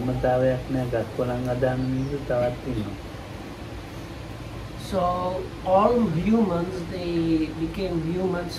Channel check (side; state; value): both; identical; correlation 1.00